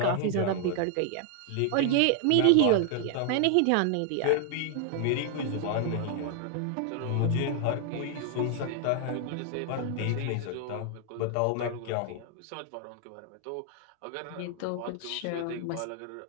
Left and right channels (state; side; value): different; both; correlation 0.00